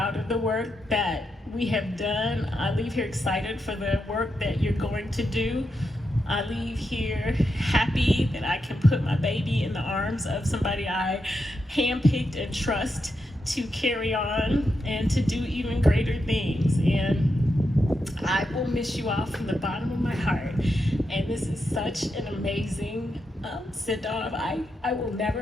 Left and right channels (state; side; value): normal; both; correlation 0.85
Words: of the work that we have done. I leave here excited for the work that you're going to do. I leave here happy that I can put my baby in the arms of somebody I handpicked and trust to carry on and to do even greater things. And I will miss you all from the bottom of my heart. And this is such an amazing send-off. I will never,